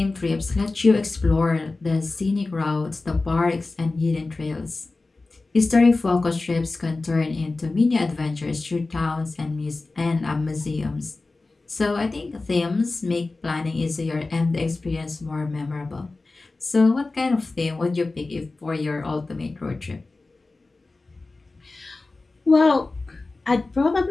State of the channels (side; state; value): right; quieter; 3.4 dB